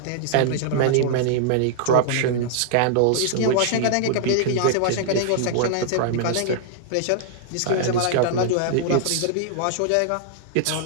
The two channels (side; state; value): both; different; correlation -0.01